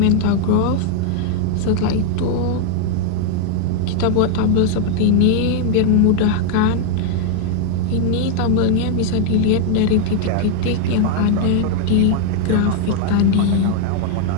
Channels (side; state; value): both; different; correlation 0.00